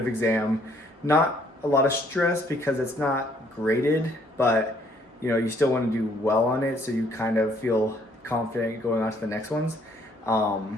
exam. Not a lot of stress because it's not graded, but you still want to do well on it, so you kind of feel confident going on to the next ones.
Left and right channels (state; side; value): normal; both; correlation 0.65